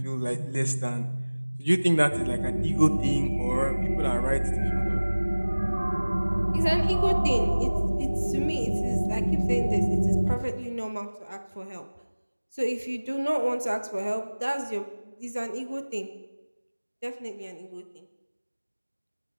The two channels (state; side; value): inverted; both; correlation -1.00